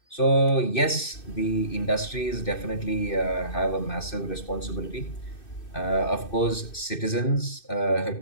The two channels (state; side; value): late; right; 2.6 ms